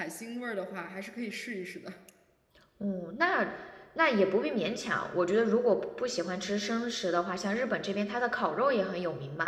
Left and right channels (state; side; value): identical; both; correlation 1.00